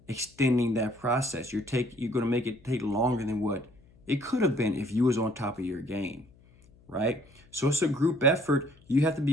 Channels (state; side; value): noise; left; hum, 28 dB below the sound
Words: extending that process. You're going to make it take longer than what it could have been if you was on top of your game, right? So it's a group effort. You have to